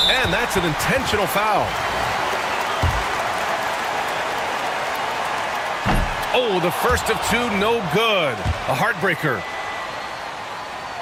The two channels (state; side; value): identical; both; correlation 1.00